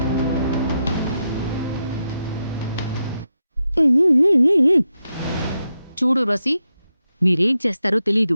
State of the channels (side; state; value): both; inverted; correlation -0.86